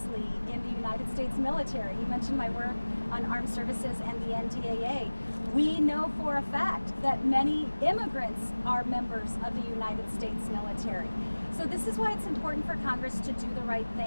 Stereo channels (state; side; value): inverted; both; correlation -1.00